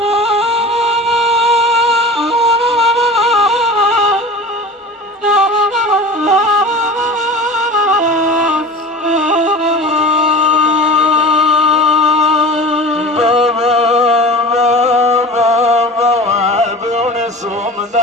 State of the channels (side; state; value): both; normal; correlation 0.35